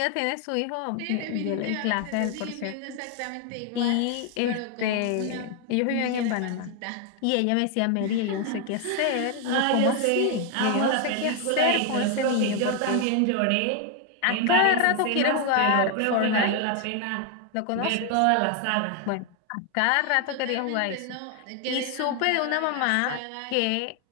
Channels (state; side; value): different; both; correlation 0.00